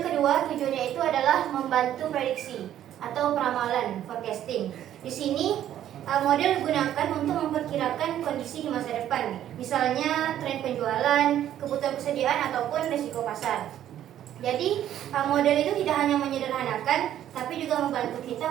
kedua tujuannya itu adalah membantu prediksi atau peramalan, forecasting. Di sini model digunakan untuk memperkirakan kondisi di masa depan, misalnya tren penjualan, kebutuhan persediaan ataupun risiko pasar. Jadi model itu tidak hanya menyederhanakan, tapi juga membantu kita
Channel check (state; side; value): quieter; left; 11.4 dB